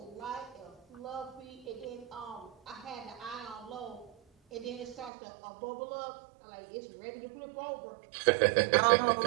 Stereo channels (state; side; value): drops out; left; at 5.1 s